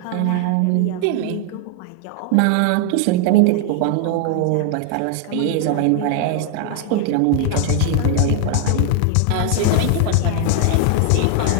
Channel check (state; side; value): different; both; correlation 0.00